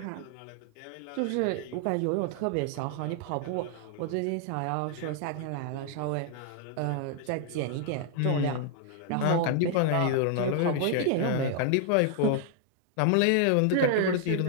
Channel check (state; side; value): different; both; correlation 0.00